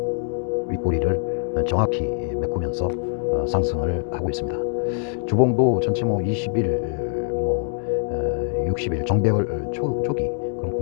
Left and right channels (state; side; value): silent; right; 63 dB below the other